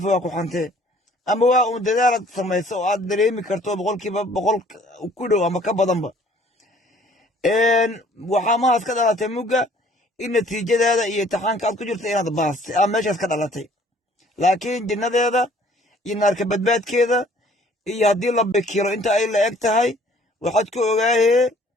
waa ku xantee, ama waa uun dadaalaad samayso oo aad dareemi karto 100% ku dhow ama ka badanba. waxaa mahaas ka dhalatay mugga in natiijadaada iyo imtixaanka aad ku jirta inaad baastay aa meeshaas ka dhalatay. laakiin jinnadeeda iyo naarka badbaadkeeda iyo haddii la bikiro inta ay la eg tahay waxaad ku ogaahee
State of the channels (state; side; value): normal; both; correlation 0.56